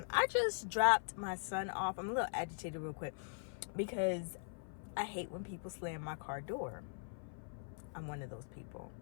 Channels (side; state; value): right; silent; 50 dB below the other